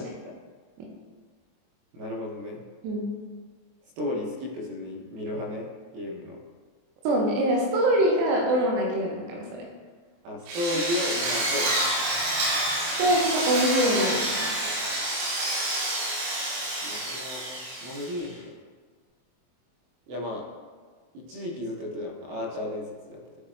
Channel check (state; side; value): late; left; 23 ms